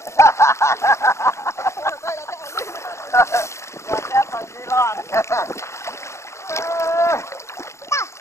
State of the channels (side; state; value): right; late; 0.14 ms